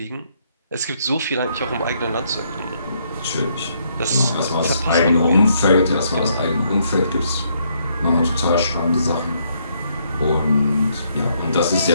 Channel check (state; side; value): inverted; both; correlation -0.73